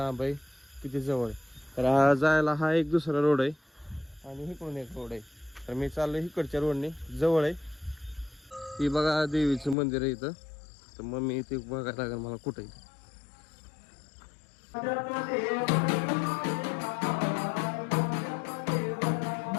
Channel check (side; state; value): right; drops out; at 9.8 s